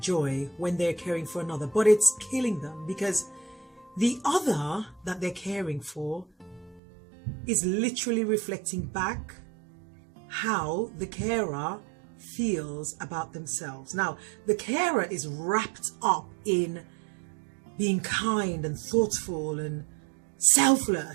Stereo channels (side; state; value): left; drops out; at 6.8 s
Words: joy when they're caring for another, but it's killing them because the other that they're caring for is literally reflecting back how the carer feels about themselves. Now, the carer is wrapped up in being kind and thoughtful and